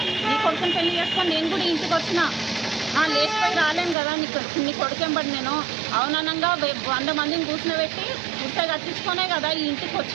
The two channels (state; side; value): drops out; left; at 4.0 s